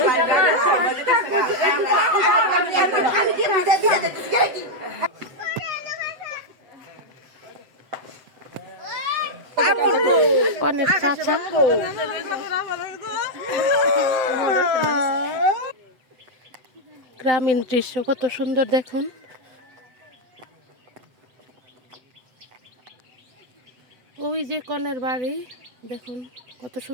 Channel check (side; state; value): left; late; 7.9 ms